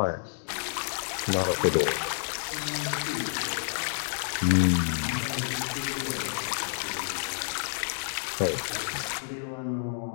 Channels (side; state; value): right; silent; digital silence